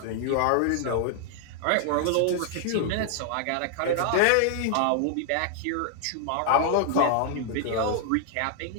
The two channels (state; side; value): different; both; correlation 0.00